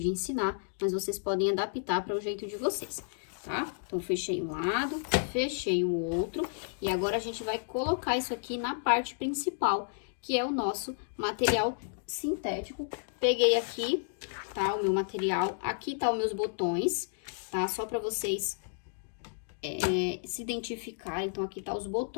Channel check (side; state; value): right; silent; digital silence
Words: ensinar, mas vocês podem adaptar para o jeito de vocês, tá? Então, fechei um lado, fechei o outro, e agora a gente vai colocar isso aqui na parte principal, que é o nosso material sintético. Peguei aqui, tá? O meu material, aqui tá os meus botões, tá? Só pra vocês se identificarem. Então, aqui tá os